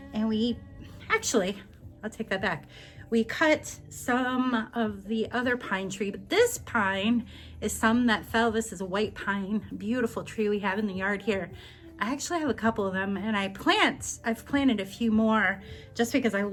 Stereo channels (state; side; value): identical; both; correlation 1.00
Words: and we actually, I'll take that back. We cut some of the other pine tree, but this pine is some that fell. This is a white pine, beautiful tree we have in the yard here. I actually have a couple of them, and I've planted a few more just because I